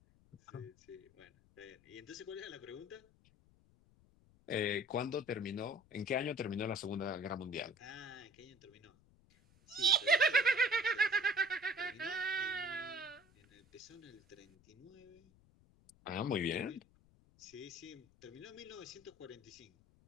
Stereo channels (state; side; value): noise; left; rumble, 29 dB below the sound